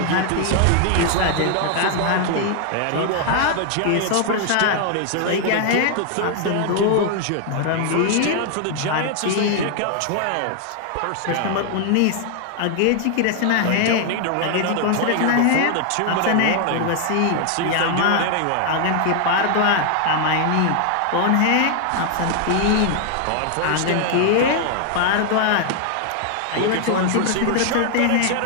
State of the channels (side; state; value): both; different; correlation 0.00